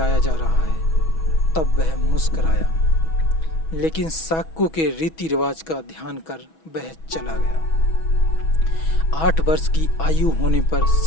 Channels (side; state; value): right; late; 6.2 ms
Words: जा रहा है तब वह मुस्कुराया, लेकिन शाक्यों के रीति रिवाज का ध्यान कर वह चला गया। 8 वर्ष की आयु होने पर